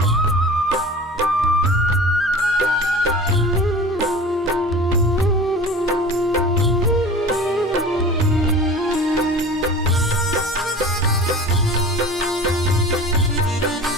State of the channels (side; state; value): both; normal; correlation 0.39